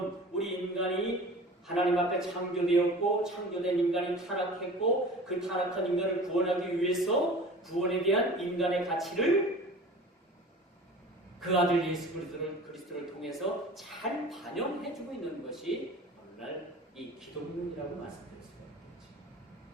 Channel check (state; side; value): normal; both; correlation 0.39